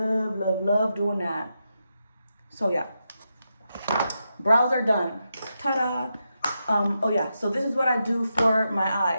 doing that. So yeah, brows are done. Ta-da! Oh yeah, so this is what I do for my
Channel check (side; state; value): both; inverted; correlation -0.86